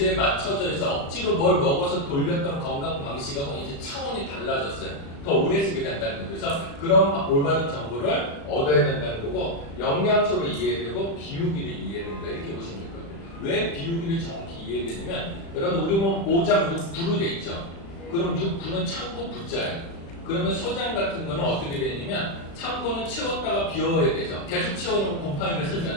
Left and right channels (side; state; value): right; late; 36 ms